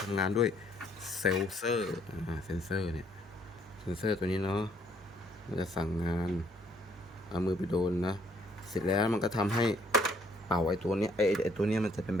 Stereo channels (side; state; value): both; normal; correlation 0.66